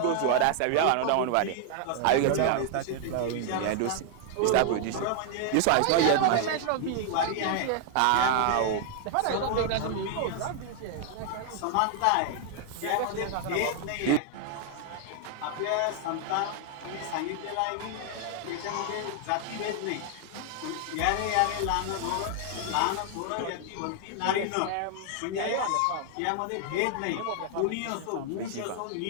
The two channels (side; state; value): both; different; correlation 0.00